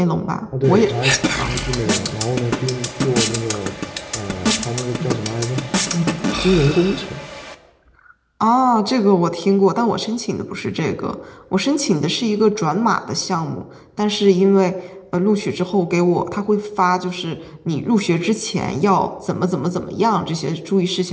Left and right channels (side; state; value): both; identical; correlation 1.00